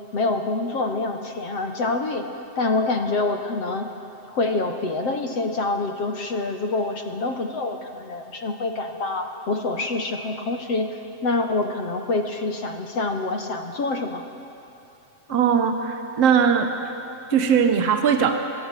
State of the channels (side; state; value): right; late; 7.7 ms